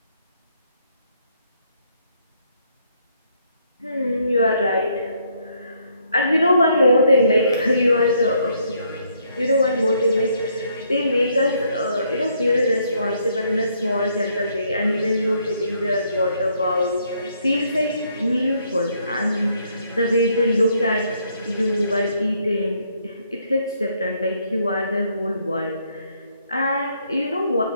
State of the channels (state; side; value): inverted; both; correlation -0.71